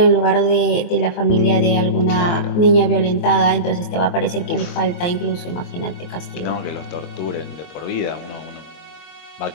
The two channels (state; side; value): late; right; 23 ms